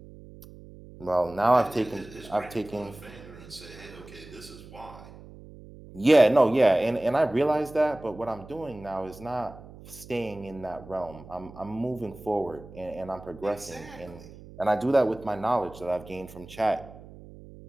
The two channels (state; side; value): noise; right; hum, 18 dB below the sound